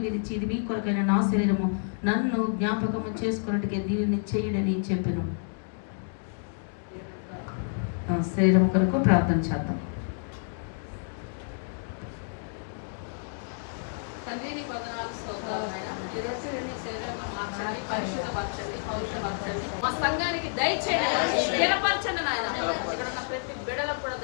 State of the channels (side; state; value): right; silent; digital silence